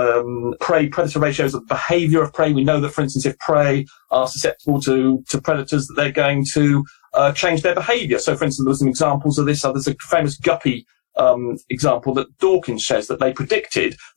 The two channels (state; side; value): silent; right; digital silence